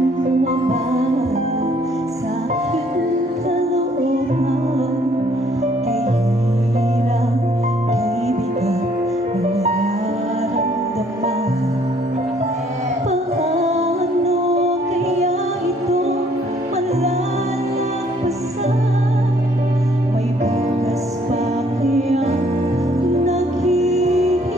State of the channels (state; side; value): normal; both; correlation 0.63